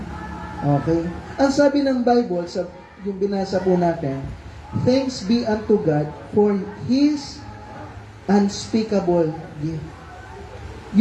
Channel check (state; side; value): identical; both; correlation 1.00